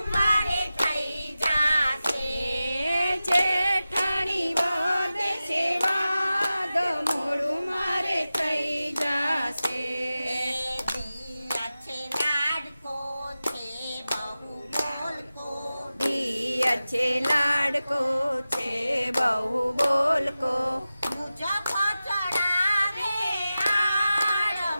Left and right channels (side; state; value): both; inverted; correlation -0.94